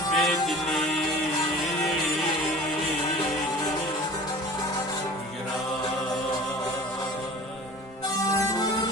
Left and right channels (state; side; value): normal; both; correlation 0.42